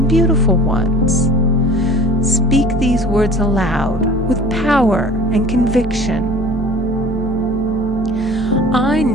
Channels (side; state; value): both; normal; correlation 0.45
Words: beautiful ones. Speak these words aloud with power and conviction. I